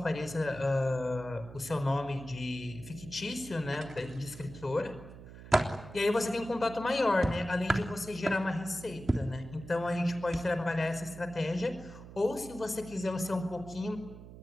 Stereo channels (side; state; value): right; noise; hum, 15 dB below the sound